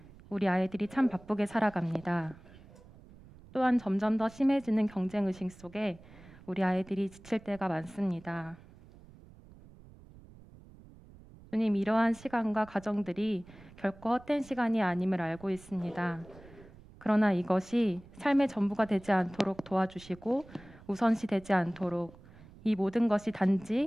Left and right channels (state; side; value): noise; right; rumble, 21 dB below the sound